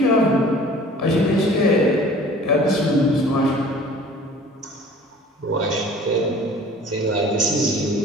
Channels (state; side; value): normal; both; correlation 0.47